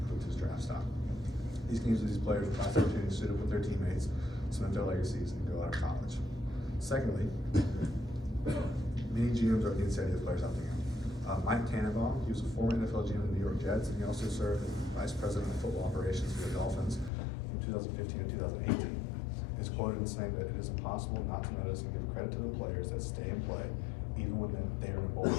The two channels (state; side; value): drops out; right; at 17.1 s